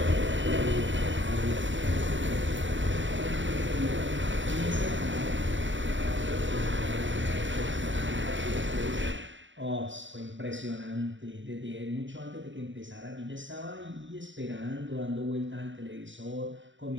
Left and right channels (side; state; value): left; late; 0.55 ms